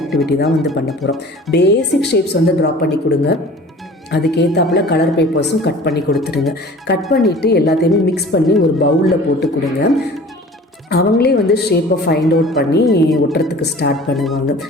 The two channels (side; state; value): both; normal; correlation 0.44